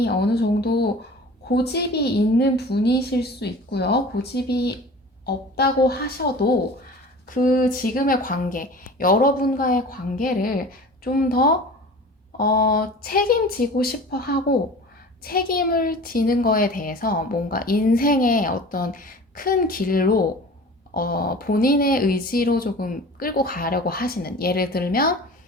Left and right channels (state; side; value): normal; both; correlation 0.40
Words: 어느 정도 고집이 있는 분이실 수 있고요. 고집이 없다고 하셔도 그 지금의 관계, 여러분과의 관계를 좀 더 책임지고 싶어 하고, 책임을 지는 거에 대해서 뭔가 인생의 어떤 큰 길로 본인의 의지로 조금 끌고 가려고 하시는, 예를 들면